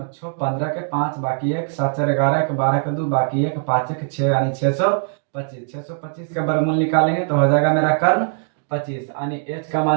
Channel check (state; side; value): silent; left; digital silence